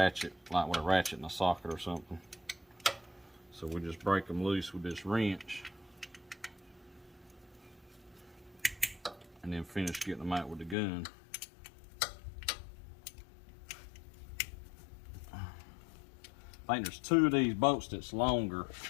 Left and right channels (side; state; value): right; drops out; at 10.8 s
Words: like with a ratchet and a socket or something. So we just break them loose with this wrench and then finish getting them out with the gun. I think there's two of these bolts that's longer